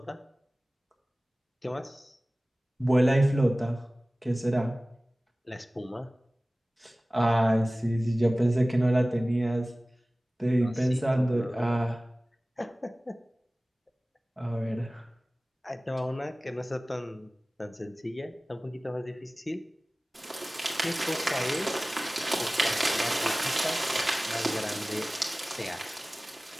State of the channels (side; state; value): both; normal; correlation 0.98